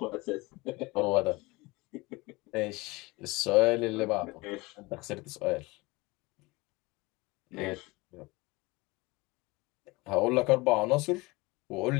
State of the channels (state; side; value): quieter; right; 23.2 dB